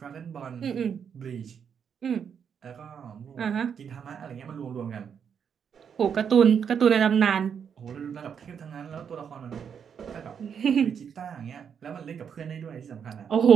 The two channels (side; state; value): left; quieter; 7.4 dB